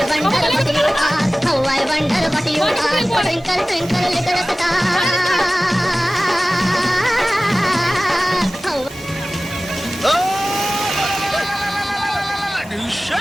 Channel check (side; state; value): both; normal; correlation 0.97